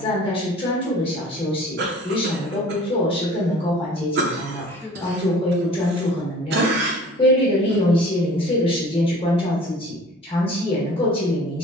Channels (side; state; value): both; normal; correlation 0.47